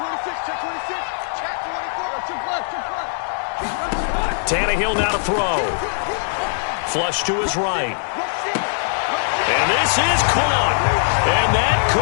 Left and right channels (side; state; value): right; silent; 65 dB below the other